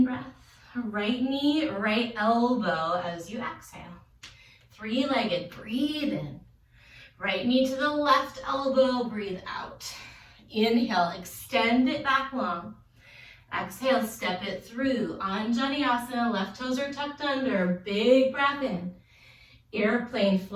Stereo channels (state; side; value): identical; both; correlation 1.00